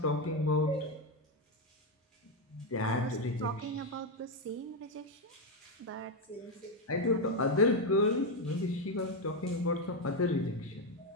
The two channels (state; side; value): normal; both; correlation 0.06